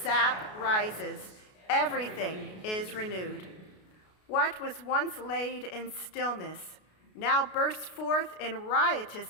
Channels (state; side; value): late; right; 33 ms